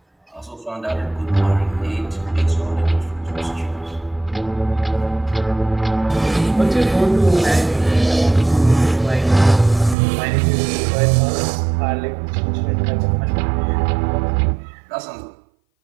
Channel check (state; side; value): drops out; left; at 10.0 s